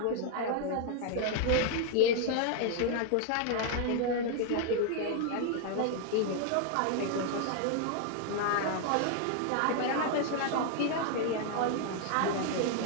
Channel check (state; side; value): different; both; correlation 0.00